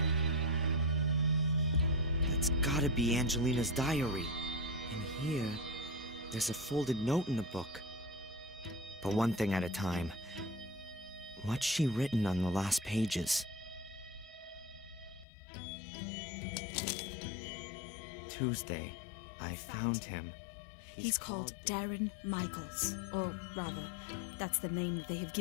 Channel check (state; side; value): drops out; right; at 15.2 s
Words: That's gotta be Angelina's diary. And here, there's a folded note in the book. But one thing at a time. What's she written on the last pages? Tuesday, I found him. He's called Darren Michaels. Or rather, that's the name that they have